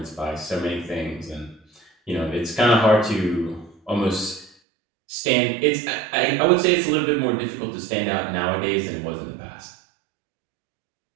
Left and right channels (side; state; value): left; drops out; at 4.5 s